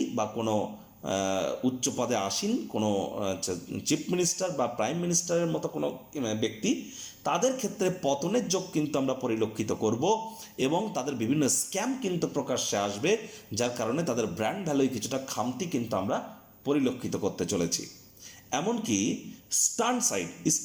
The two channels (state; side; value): identical; both; correlation 1.00